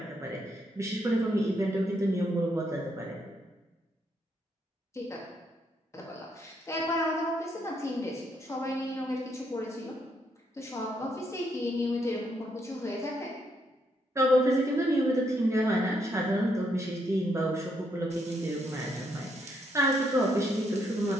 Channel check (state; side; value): normal; both; correlation 0.75